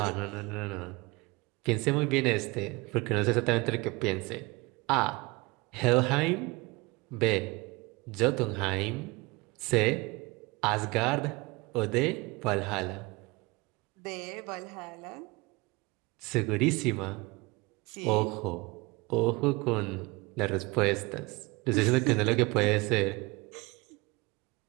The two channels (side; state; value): left; quieter; 24.6 dB